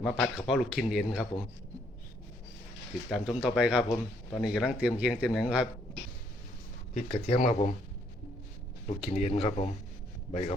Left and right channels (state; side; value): normal; both; correlation 0.69